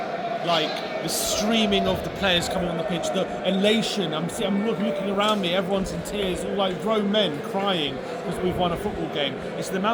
like the streaming of the players coming on the pitch, the elation. I'm looking around me, everyone's in tears, all like grown men crying because we've won a football game. It's the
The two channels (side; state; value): both; identical; correlation 1.00